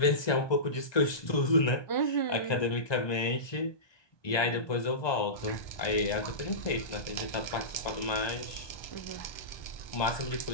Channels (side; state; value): right; late; 1.2 ms